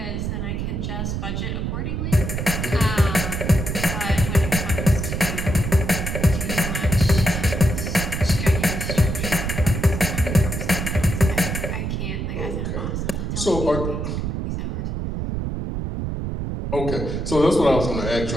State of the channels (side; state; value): right; noise; rumble, 3 dB below the sound